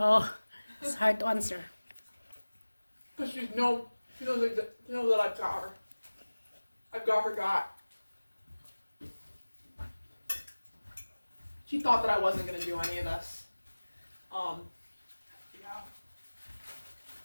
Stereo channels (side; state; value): both; inverted; correlation -1.00